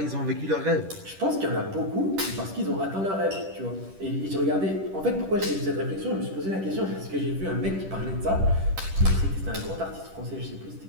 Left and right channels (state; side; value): late; left; 10 ms